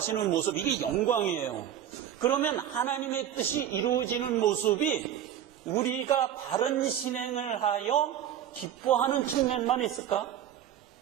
모습, 이게 영광이에요. 그러면 하나님의 뜻이 이루어지는 모습이 우리가 바른 신행을 하여 기뻐하는 측면만 있을까?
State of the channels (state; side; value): quieter; left; 10.4 dB